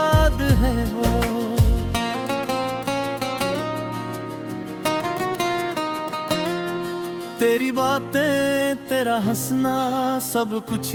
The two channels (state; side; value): identical; both; correlation 1.00